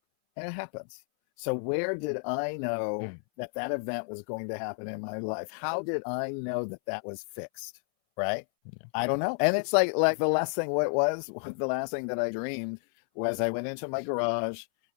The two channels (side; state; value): right; silent; 57 dB below the other